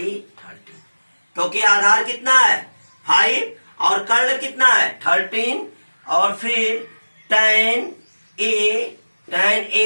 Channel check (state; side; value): inverted; both; correlation -1.00